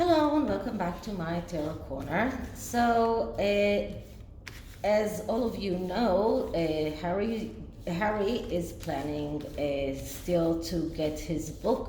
Hello and welcome back to my Tarot Corner. So, as all of you know, Harry is planning still to get his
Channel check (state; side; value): identical; both; correlation 1.00